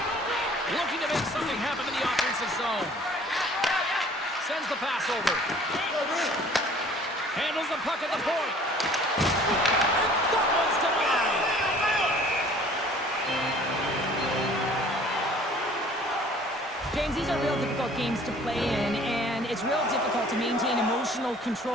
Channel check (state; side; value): normal; both; correlation 0.52